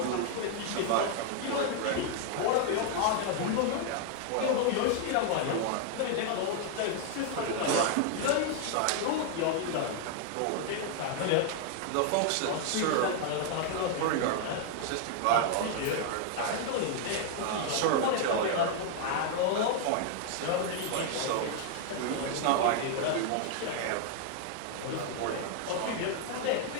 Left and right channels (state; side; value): different; both; correlation 0.00